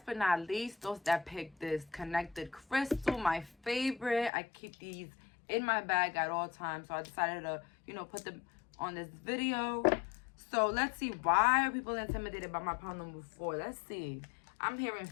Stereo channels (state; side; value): drops out; right; at 4.3 s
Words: but not least, those that picked this connected crystal, my favorite. I keep these in my bag at all times, so I decided to, you know, put them on this video. So let's see, why are people intimidated by my pound number 4? Let's see. I'm hearing